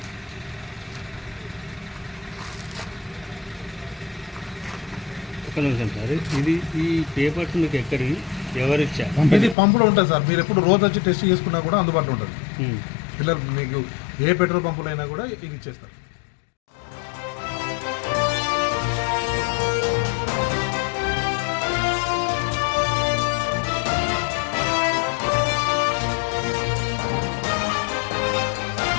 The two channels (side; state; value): right; drops out; at 9.6 s